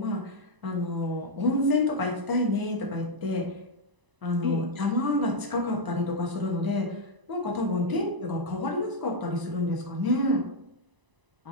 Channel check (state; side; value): late; left; 1.0 ms